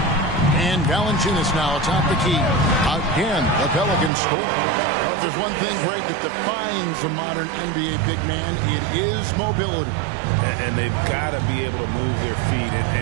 And Valanciunas now atop the key. Again, the Pelicans score. But if there's one thing, Greg, that defines a modern NBA big man, it is mobility. And they've got to be able to move their feet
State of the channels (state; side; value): drops out; left; at 4.1 s